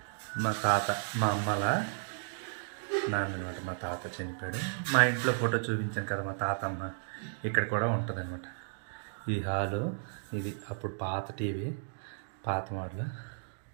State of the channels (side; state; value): left; silent; digital silence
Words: మా తాత, మా అమ్మల నాన్న అనమాట, మా తాత చనిపోయాడు. మా ఇంట్లో ఫోటో చూపించాను కదా మా తాతమ్మ, ఇక్కడ కూడా ఉంటుంది అనమాట. ఈ హాలు ఇది అప్పుడు పాత టీవీ, పాత మోడల్